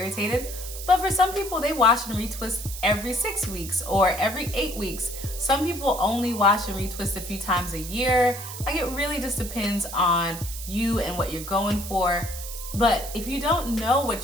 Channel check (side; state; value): right; noise; hiss, 10 dB below the sound